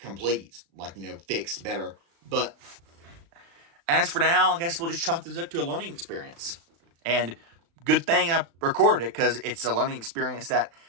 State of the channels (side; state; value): left; late; 35 ms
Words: like, fixed better. But as for now, I guess we'll just chalk this up to a learning experience. And good thing I recorded it, because it's a learning experience that